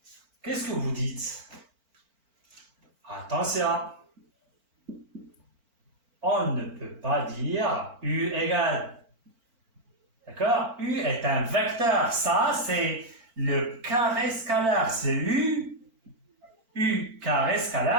Qu'est-ce que vous dites? Attention, on ne peut pas dire U égale. D'accord? U est un vecteur. Ça, c'est le carré scalaire. C'est U. U carré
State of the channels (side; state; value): left; late; 4.4 ms